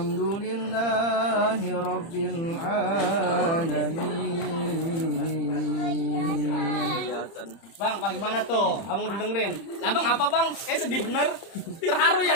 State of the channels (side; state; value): right; late; 31 ms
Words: لله رب العالمين. Bang, bagaimana tuh? Abang udah dengerin? Lah bang, apa bang? Sedih bener. Terharu